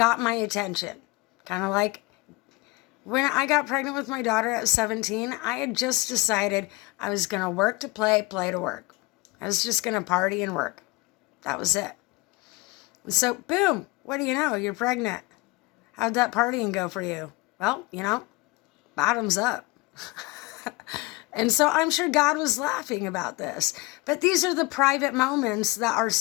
my attention. Kind of like when I got pregnant with my daughter at 17, I had just decided I was going to work to play, play to work. I was just going to party and work. That was it. And so, boom, what do you know? You're pregnant. How'd that partying go for you? Well, bottoms up. And so I'm sure God was laughing about this. But these are the private moments that are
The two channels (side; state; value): right; quieter; 23.4 dB